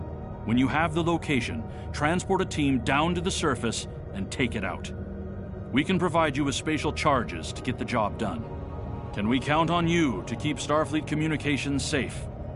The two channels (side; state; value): both; identical; correlation 1.00